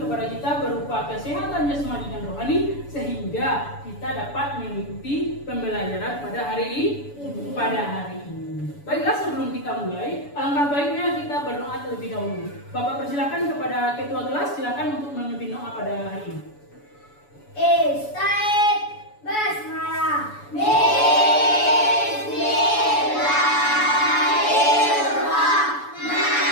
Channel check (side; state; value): right; late; 7.0 ms